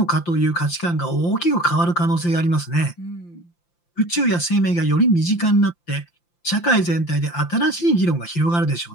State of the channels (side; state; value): right; late; 5.8 ms